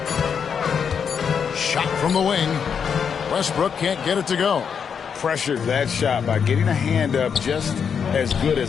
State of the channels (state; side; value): quieter; right; 6.9 dB